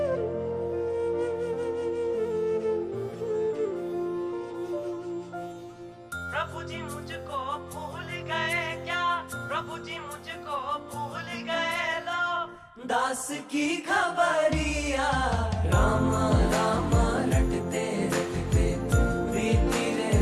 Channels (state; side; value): identical; both; correlation 1.00